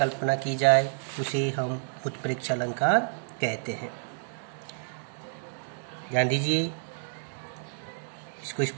की जाए उसे हम उत्प्रेक्षा अलंकार कहते हैं। ध्यान दीजिए, इसको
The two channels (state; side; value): silent; left; digital silence